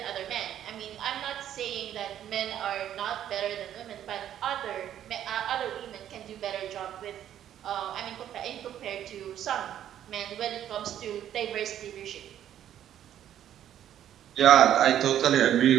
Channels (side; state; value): left; quieter; 10.8 dB